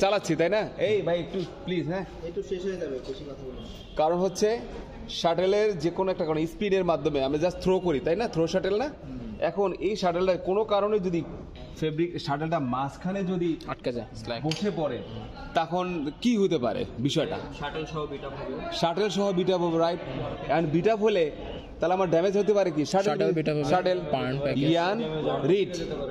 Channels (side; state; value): both; identical; correlation 1.00